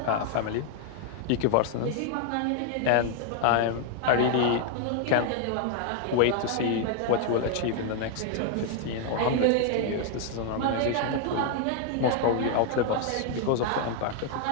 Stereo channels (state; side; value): different; both; correlation 0.00